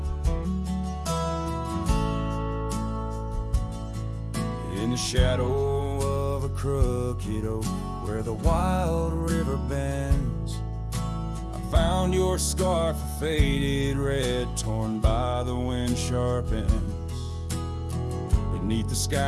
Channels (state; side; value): identical; both; correlation 1.00